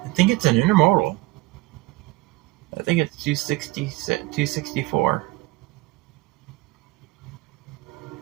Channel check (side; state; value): left; quieter; 20.9 dB